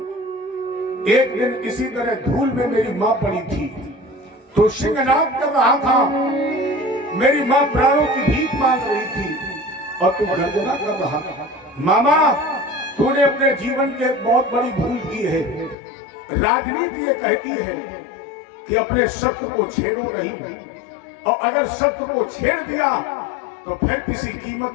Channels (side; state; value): right; drops out; at 15.8 s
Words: एक दिन इसी तरह धूल में मेरी माँ पड़ी थी, तो सिंहनाद कर रहा था, मेरी माँ प्राणों की भीख मांग रही थी, और तू गर्जना कर रहा था। मामा तूने अपने जीवन की एक बहुत बड़ी भूल की है। राजनीति ये कहती है कि अपने शत्रु को छेड़ो नहीं, और अगर शत्रु को छेड़ दिया तो फिर किसी